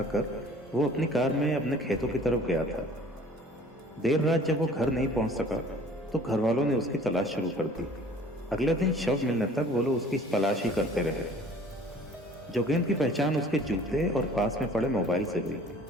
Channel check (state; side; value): normal; both; correlation 0.50